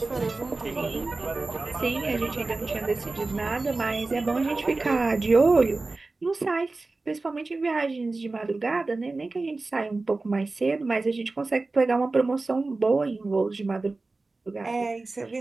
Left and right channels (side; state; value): left; quieter; 3.5 dB